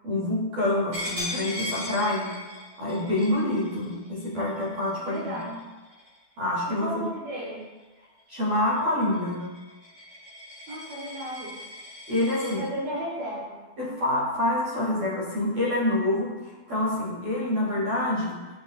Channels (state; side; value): late; left; 12 ms